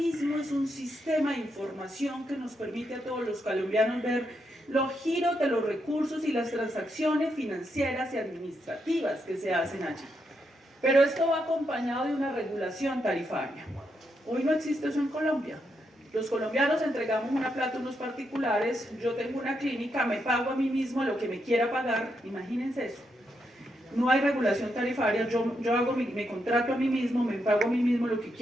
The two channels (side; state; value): both; normal; correlation 0.81